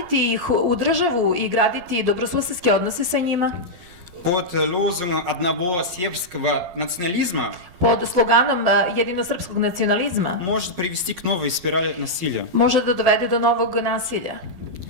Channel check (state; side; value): late; left; 12 ms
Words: ih u državu i graditi dobrosusedske odnose sa njima Под лозунгом одного сербского национализма pod sloganom jedinosrpskog nacionalizma может привести к новой спирали насилия. može da dovede do novog nasilja.